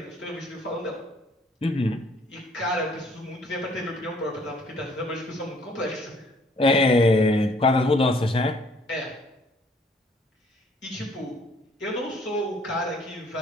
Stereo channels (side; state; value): both; normal; correlation 0.61